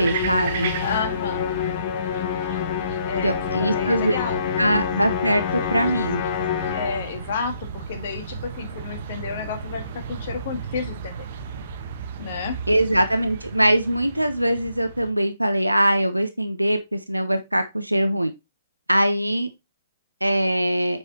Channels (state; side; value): inverted; both; correlation -0.78